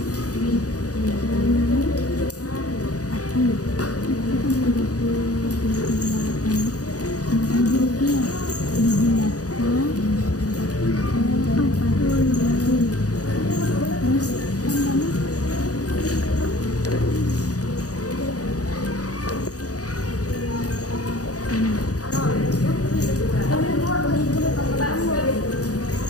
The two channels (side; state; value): right; late; 0.67 ms